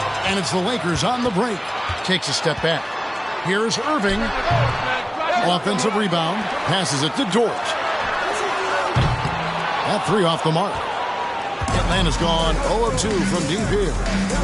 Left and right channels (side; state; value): both; identical; correlation 1.00